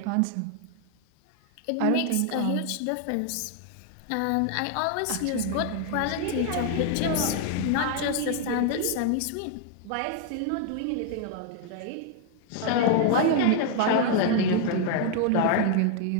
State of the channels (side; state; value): both; different; correlation 0.00